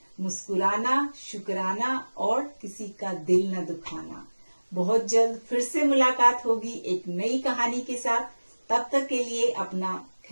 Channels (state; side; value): inverted; both; correlation -1.00